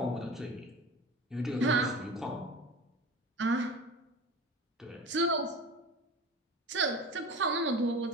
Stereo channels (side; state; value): both; normal; correlation 0.33